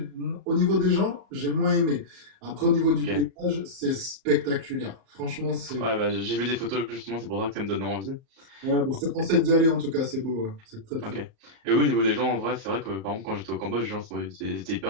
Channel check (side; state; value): left; late; 38 ms